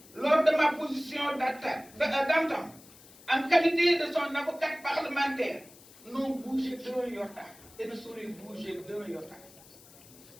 lors de ma position d'antan, en qualité de son avocate parlementaire, n'ont bougé d'un iota et ne sauraient bouger d'un iota.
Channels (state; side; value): noise; left; hiss, 22 dB below the sound